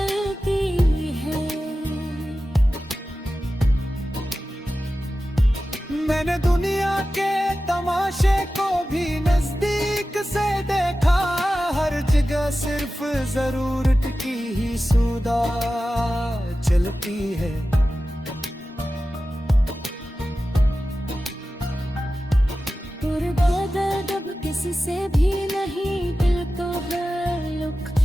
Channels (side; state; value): both; normal; correlation 0.94